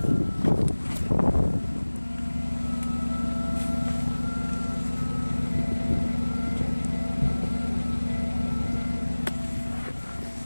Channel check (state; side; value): inverted; both; correlation -1.00